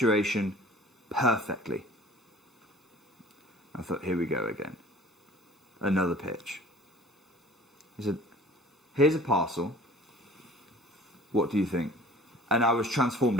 perfectly. I thought, here we go again. Another pitch. He said, here's a parcel. What do you think? And I was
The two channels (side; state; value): both; normal; correlation 0.48